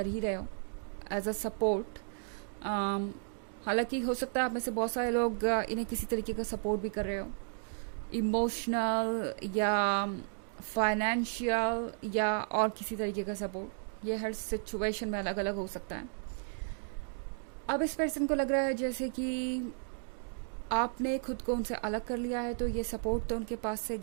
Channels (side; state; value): left; silent; digital silence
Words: ही रहे हो एज अ सपोर्ट। हालांकि हो सकता है आप में से बहुत सारे लोग इन्हें किसी तरीके का सपोर्ट भी कर रहे हो, इमोशनल या फाइनेंशियल या और किसी तरीके का सपोर्ट। ये हर सिचुएशन में अलग अलग हो सकता है। अब इस पर्सन को लग रहा है जैसे कि आपने खुद को उनसे अलग कर लिया है, तो ये सपोर्ट तो उनके पास से